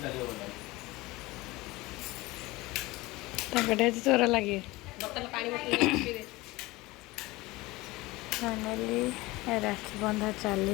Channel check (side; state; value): right; quieter; 20.8 dB